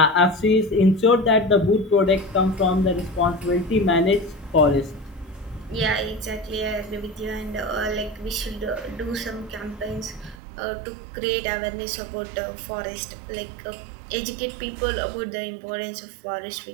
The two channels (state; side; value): drops out; left; at 10.4 s